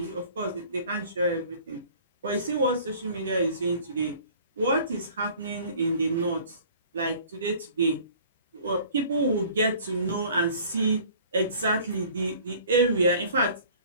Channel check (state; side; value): inverted; both; correlation -0.50